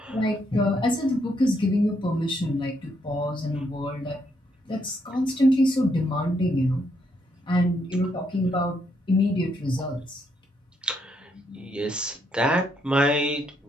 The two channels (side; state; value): both; normal; correlation 0.75